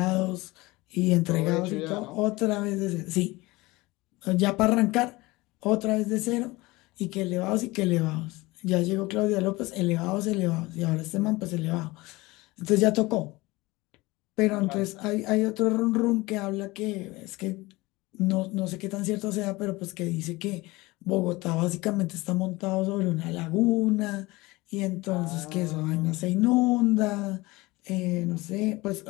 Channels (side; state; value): right; quieter; 21.4 dB